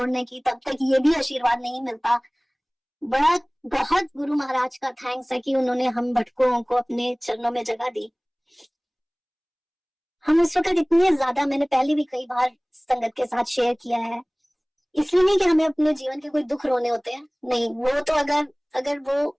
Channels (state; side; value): identical; both; correlation 1.00